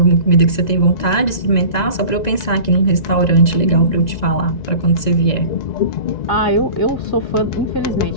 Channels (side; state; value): right; late; 1.9 ms